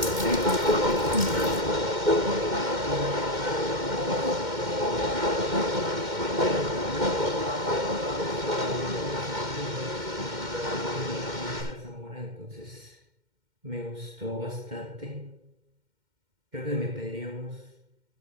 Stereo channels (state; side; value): late; left; 2.1 ms